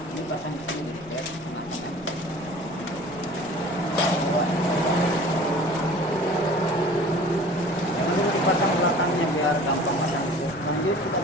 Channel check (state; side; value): noise; left; rumble, 21 dB below the sound